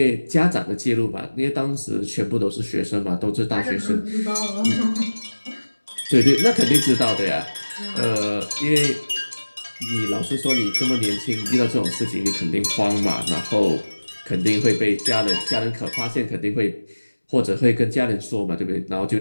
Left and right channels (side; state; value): both; inverted; correlation -1.00